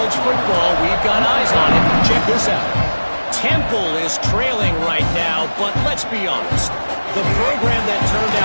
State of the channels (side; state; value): both; inverted; correlation -1.00